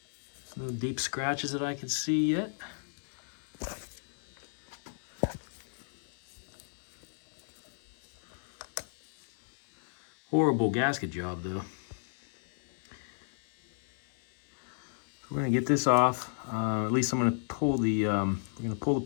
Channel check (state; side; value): silent; right; 56 dB below the other